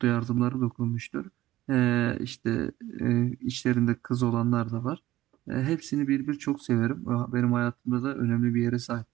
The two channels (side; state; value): left; quieter; 15.6 dB